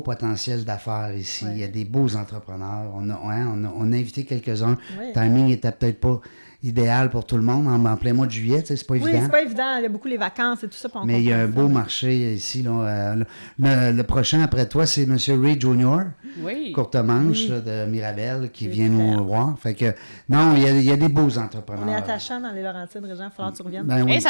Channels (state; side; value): inverted; both; correlation -1.00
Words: potentiel d'affaires ici. Ouais. Il y a des beaux entrepreneurs. On a invité quelques-uns. Oui. Le timing était peut-être pas idéal pour tout le monde en plein mois de juillet. Tu sais, c'est pas Oui, évident. c'est pas évident. Il y a beaucoup les vacances et tout ça. Puis on Mais il y a un comprend beau ça. marché ici. Là, le prochain après toi, c'est M. Reed Jr., Oui. courte manche là, de Mirabel, qui C'est vient clair. nous voir. Fait que, non, il y a des beaux entrepreneurs. On est attachants dans les Laurentides, Régent. Il va falloir que tu reviennes. Ben oui. Hey,